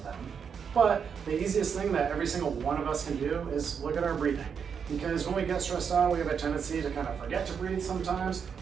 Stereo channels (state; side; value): quieter; left; 6.8 dB